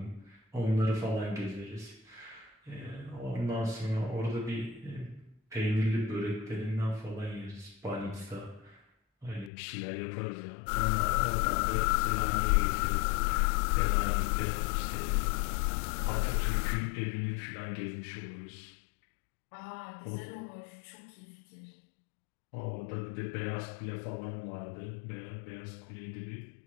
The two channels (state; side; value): drops out; right; at 9.5 s